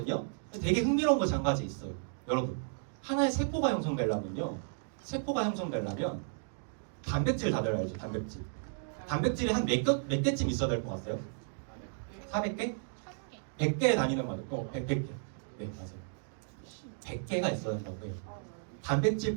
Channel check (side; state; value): left; silent; digital silence